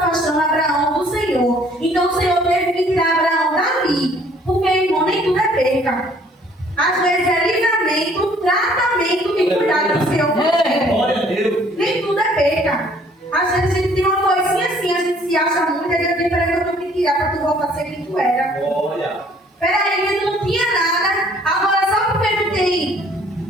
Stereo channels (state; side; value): normal; both; correlation 0.59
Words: Abraão do Senhor. Então o Senhor teve que tirar Abraão dali. Porque, irmão, nem tudo é perca. Às vezes é livramento, tratamento e cuidado do Senhor. Glória a Deus. Nem tudo é perca. Às vezes a gente tem uma coisinha assim, a gente se acha muito, e eu digo, peraí, eu tenho que tirar para tu voltar a ser quem tu era. Glória. Peraí, que tu não tinha nada, agora só porque tu tem